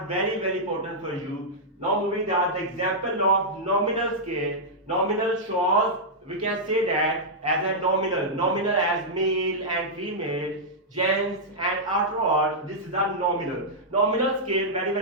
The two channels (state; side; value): normal; both; correlation -0.08